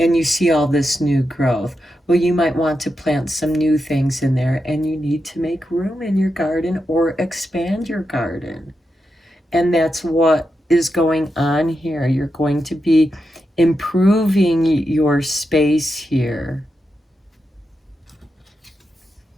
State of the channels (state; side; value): normal; both; correlation 0.87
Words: you see all this new growth. Well, you might want to plant some new things in there, and you need to make room in your garden or expand your garden. And that's what is going on here. You're going to be improving your space here.